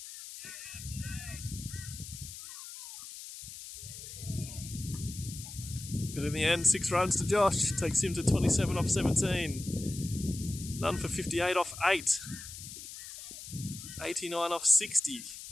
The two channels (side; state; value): left; noise; hiss, 12 dB below the sound